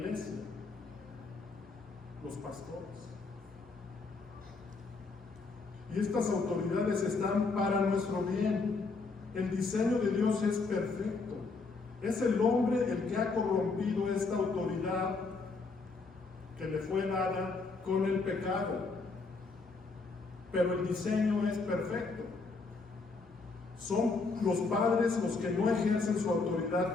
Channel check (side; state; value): right; quieter; 4.0 dB